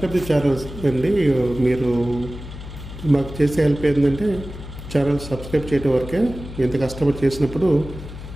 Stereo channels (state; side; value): noise; left; hum, 12 dB below the sound